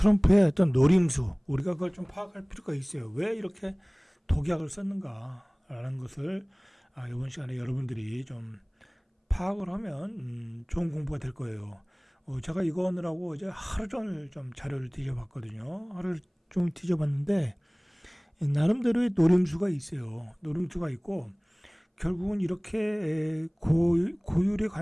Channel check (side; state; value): both; identical; correlation 1.00